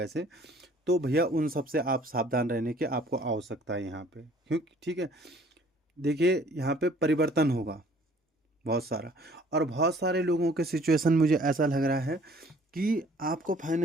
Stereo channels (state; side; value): normal; both; correlation 0.56